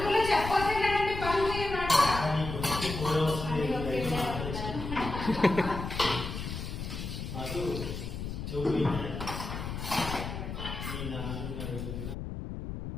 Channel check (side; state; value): left; noise; rumble, 6 dB below the sound